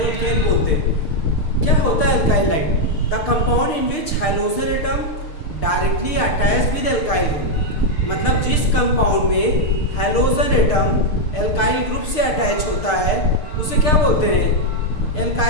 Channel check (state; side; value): late; right; 6.6 ms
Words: एल्केन बोलते हैं। क्या होता है alkyl halide? The compound in which hydrogen atom directly attached with alkyl group. मतलब जिस कंपाउंड में हाइड्रोजन एटम एल्काइल ग्रुप से अटैच होता है उसे क्या बोलते हैं?